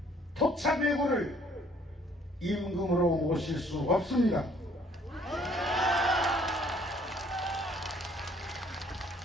토착외구를 임금으로 모실 수 없습니다.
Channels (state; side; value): normal; both; correlation 0.60